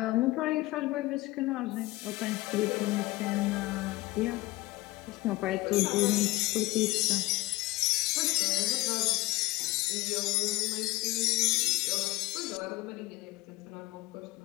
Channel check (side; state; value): right; quieter; 20.1 dB